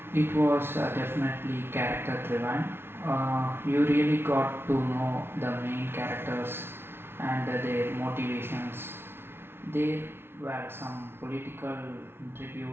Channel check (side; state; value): left; late; 0.11 ms